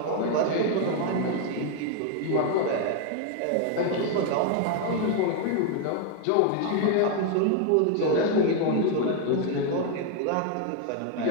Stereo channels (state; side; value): different; both; correlation 0.00